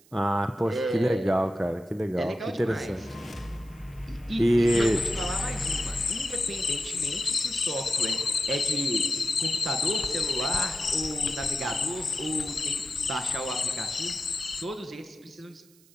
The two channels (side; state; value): right; noise; hiss, 29 dB below the sound